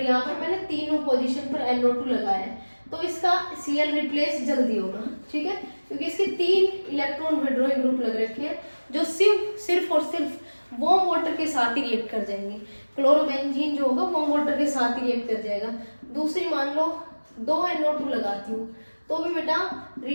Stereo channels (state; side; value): inverted; both; correlation -1.00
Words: यहाँ पर मैंने तीनों पोजीशन पर NO2 लगाया है, तो इसका Cl रिप्लेस जल्दी होगा, ठीक है, क्योंकि इसके 3 इलेक्ट्रॉन विड्रॉइंग ग्रुप लग रखे हैं जो सिर्फ और सिर्फ वार्म वाटर के साथ ही रिएक्ट कर जाएंगे। क्लोरोबेंजीन जो होगा वार्म वाटर के साथ ही रिएक्ट कर जाएगा। दूसरी मान लो 2 NO2 लगाती हूँ तो भी बेटा